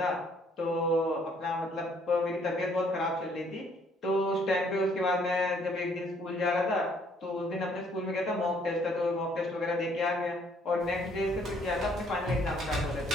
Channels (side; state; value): both; normal; correlation 0.64